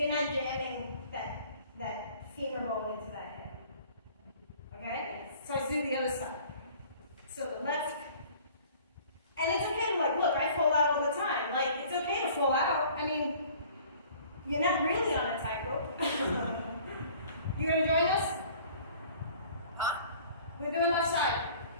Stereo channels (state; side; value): inverted; both; correlation -0.51